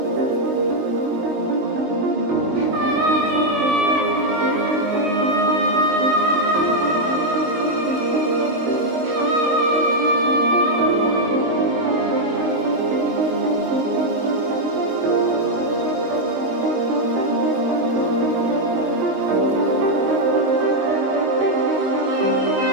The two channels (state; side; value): late; left; 22 ms